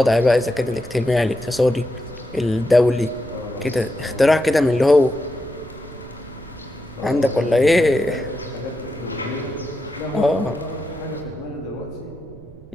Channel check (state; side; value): noise; right; rumble, 21 dB below the sound